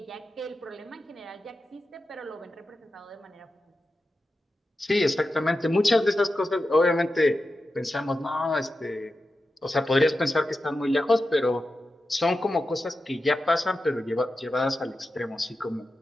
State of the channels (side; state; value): both; normal; correlation 0.91